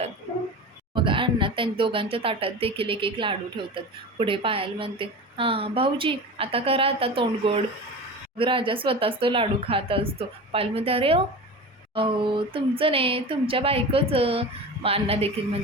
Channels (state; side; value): normal; both; correlation 0.31